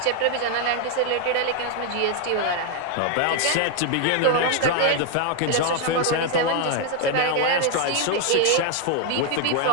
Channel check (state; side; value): different; both; correlation 0.01